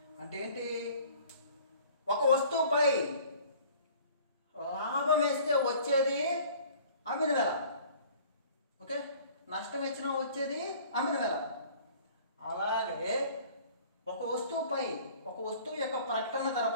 అంటే ఏంటి? ఒక వస్తువుపై లాభం వేస్తే వచ్చేది అమ్మిన వెల. ఓకే, నష్టం వచ్చినా వచ్చేది అమ్మిన వెల. అలాగే ఒక వస్తువు యొక్క ప్రకటన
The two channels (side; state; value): both; inverted; correlation -0.50